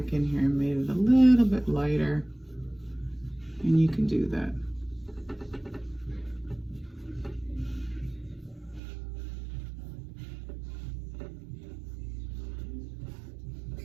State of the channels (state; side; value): drops out; left; at 8.8 s